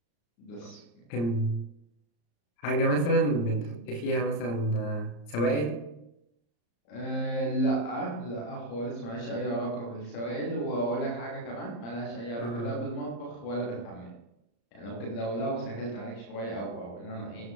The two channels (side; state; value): right; late; 34 ms